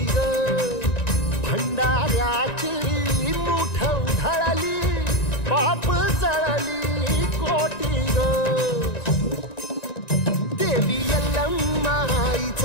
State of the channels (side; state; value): right; late; 1.9 ms